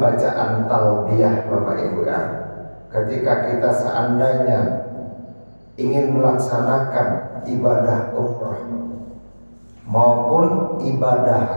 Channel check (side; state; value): both; inverted; correlation -1.00